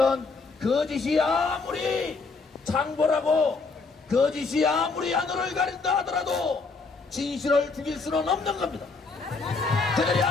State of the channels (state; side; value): quieter; right; 4.2 dB